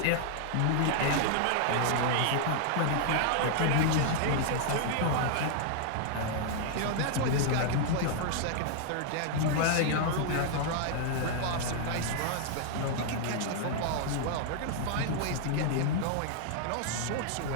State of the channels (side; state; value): both; different; correlation 0.00